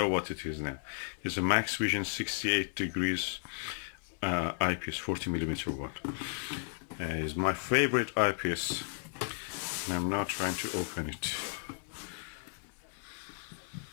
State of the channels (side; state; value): right; silent; 55 dB below the other